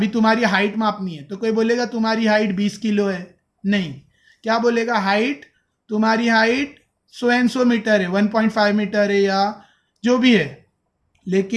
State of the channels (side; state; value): both; identical; correlation 1.00